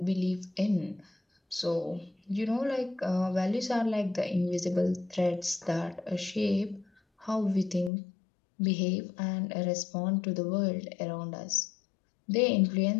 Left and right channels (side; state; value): right; drops out; at 7.9 s